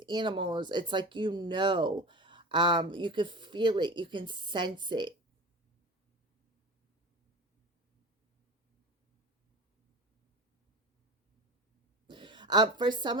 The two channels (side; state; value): both; normal; correlation 0.31